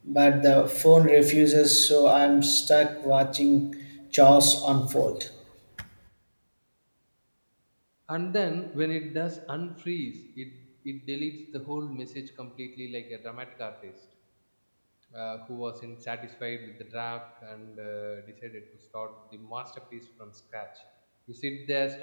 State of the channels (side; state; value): both; inverted; correlation -1.00